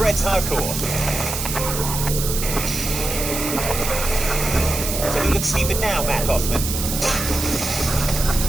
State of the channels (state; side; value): noise; right; hiss, 4 dB below the sound